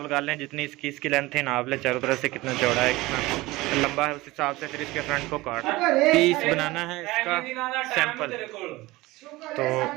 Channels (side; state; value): left; quieter; 19.9 dB